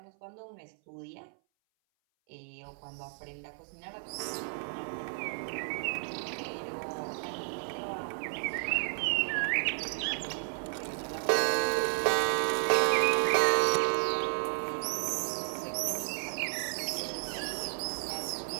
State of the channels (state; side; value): silent; left; 56 dB below the other